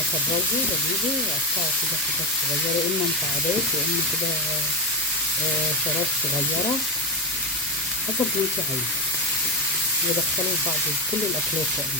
بجيبه واقطعه كده حتت صغيره، يا اما مكعبات يا اما كده شرايح صغيره حسب ما انت عايزه، وادخله في بعض كل الاكلات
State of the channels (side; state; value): both; normal; correlation 0.13